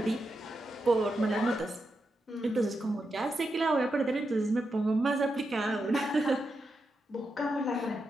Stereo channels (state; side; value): normal; both; correlation 0.86